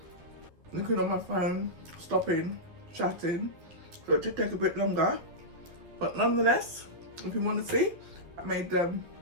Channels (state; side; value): late; left; 11 ms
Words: looking on my phone, stopping, chatting, so it did take a bit longer. But nonetheless, if you want to see, I made